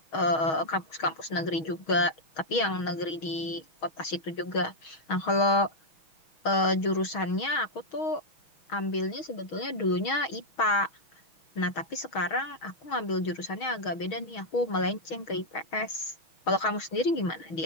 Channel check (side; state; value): right; late; 6.3 ms